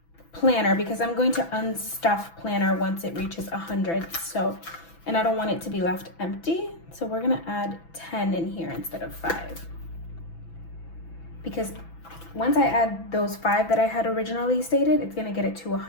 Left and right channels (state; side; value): late; right; 6.0 ms